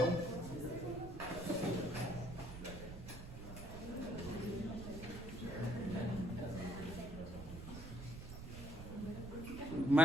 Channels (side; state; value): right; noise; rumble, 10 dB below the sound